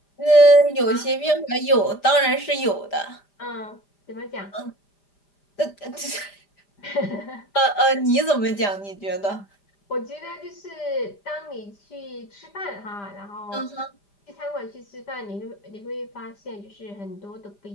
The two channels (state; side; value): late; right; 5.0 ms